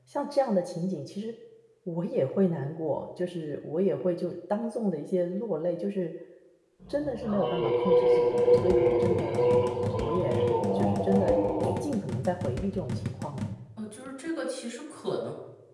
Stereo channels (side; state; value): both; identical; correlation 1.00